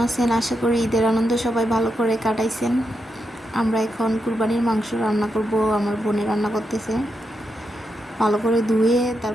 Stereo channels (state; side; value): normal; both; correlation 0.85